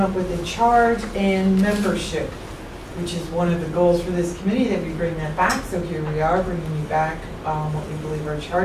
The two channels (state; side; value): identical; both; correlation 1.00